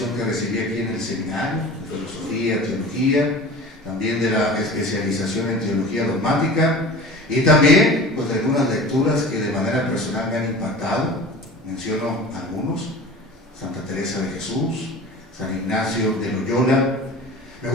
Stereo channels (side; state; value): both; normal; correlation 0.38